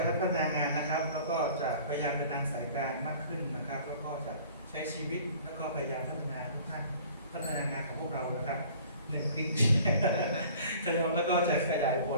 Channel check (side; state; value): both; inverted; correlation -0.49